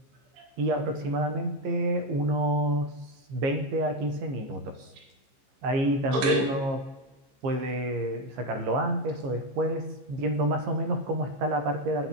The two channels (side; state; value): left; late; 15 ms